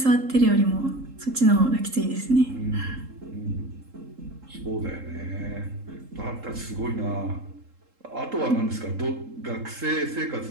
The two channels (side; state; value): left; late; 3.7 ms